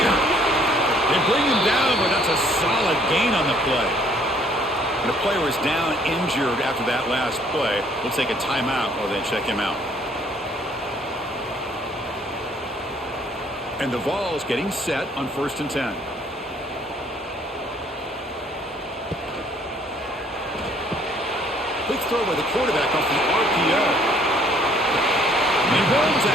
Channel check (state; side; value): normal; both; correlation 0.62